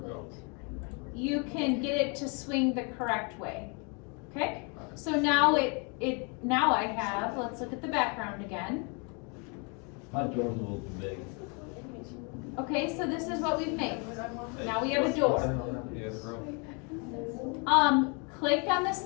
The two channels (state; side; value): quieter; right; 34.4 dB